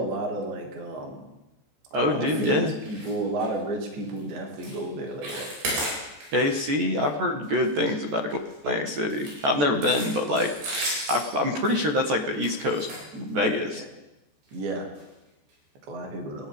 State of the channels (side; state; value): left; late; 14 ms